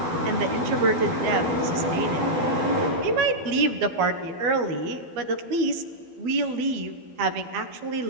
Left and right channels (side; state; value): left; late; 12 ms